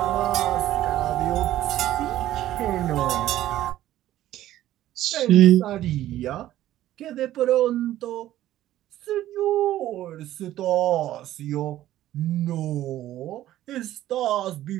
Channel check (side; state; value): left; quieter; 13.7 dB